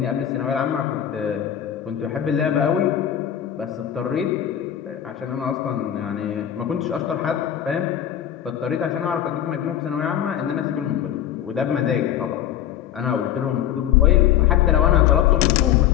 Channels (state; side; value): quieter; right; 10.6 dB